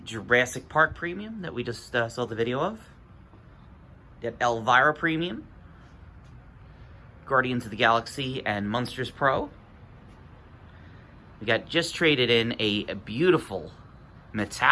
Park Premium that we just saw the video of. Got Elvira Premium, Guardians of the Galaxy and Monsters Pro. We got just traded in a beautiful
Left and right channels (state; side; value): identical; both; correlation 1.00